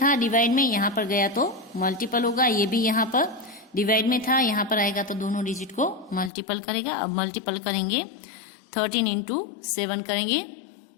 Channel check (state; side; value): drops out; right; at 6.3 s